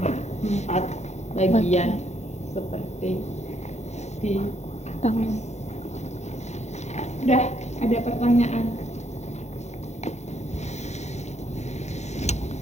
4 bagian seperti di atas. Udah ada pertanyaan?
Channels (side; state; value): right; late; 0.33 ms